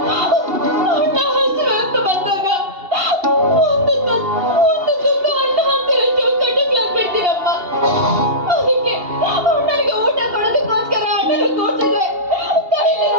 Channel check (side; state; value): left; late; 2.8 ms